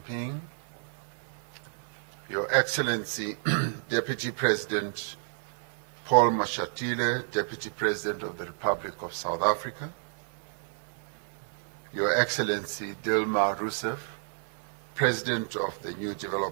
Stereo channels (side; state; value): left; silent; digital silence